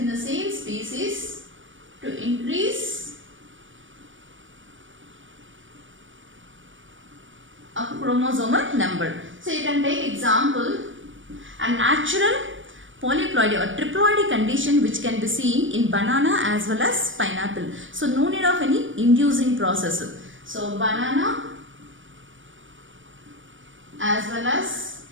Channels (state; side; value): late; left; 0.56 ms